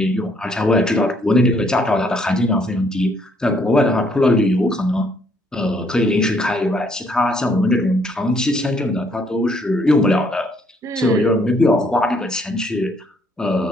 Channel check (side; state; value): both; normal; correlation 0.67